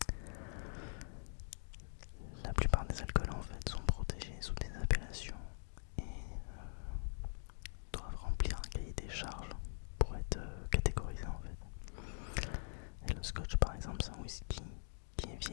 la plupart des alcools en fait sont protégés sous des appellations et doivent remplir un cahier des charges pour être catégorisés en fait. Et le scotch par exemple c'est un whisky qui est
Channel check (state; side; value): silent; right; digital silence